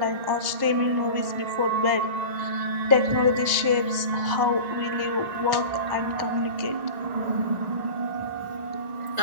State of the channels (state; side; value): late; left; 1.5 ms